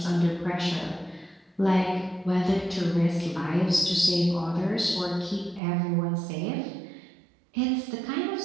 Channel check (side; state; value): left; drops out; at 5.6 s